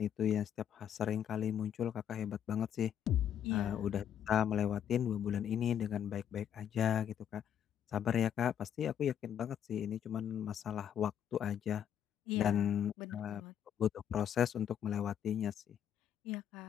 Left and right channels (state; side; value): quieter; right; 9.4 dB